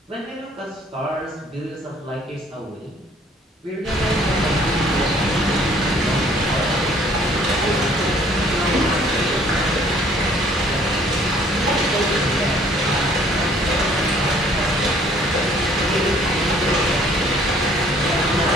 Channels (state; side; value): normal; both; correlation 0.58